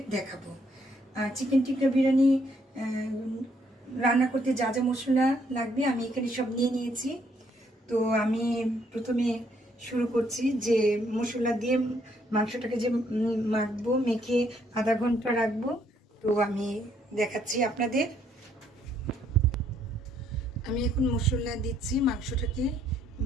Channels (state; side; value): normal; both; correlation 0.69